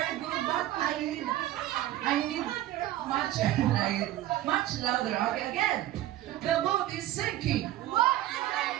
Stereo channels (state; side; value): quieter; left; 14.4 dB